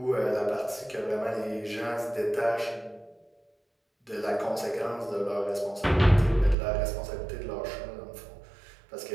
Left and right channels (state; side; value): drops out; left; at 6.6 s